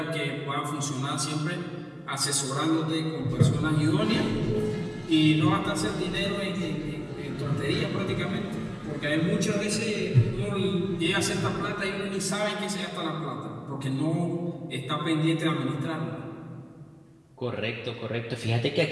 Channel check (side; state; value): both; identical; correlation 1.00